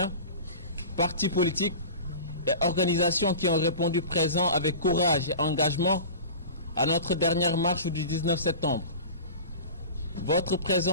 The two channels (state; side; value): inverted; both; correlation -0.35